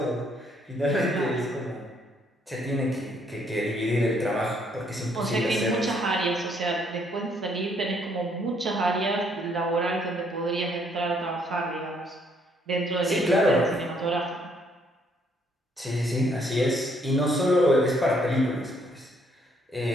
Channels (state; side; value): normal; both; correlation 0.68